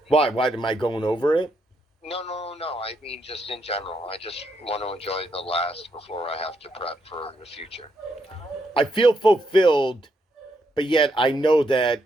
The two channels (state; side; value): normal; both; correlation 0.78